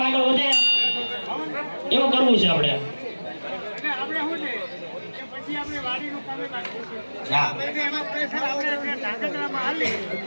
આગળ વધે એવું કરવું છે આપણે.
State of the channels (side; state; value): both; inverted; correlation -1.00